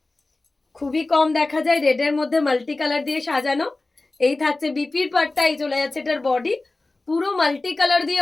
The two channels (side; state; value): right; quieter; 3.2 dB